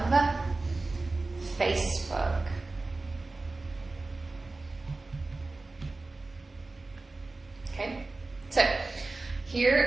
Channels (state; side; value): quieter; left; 3.3 dB